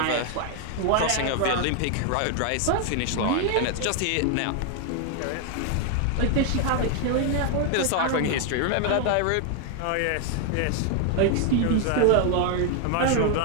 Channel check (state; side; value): different; both; correlation 0.00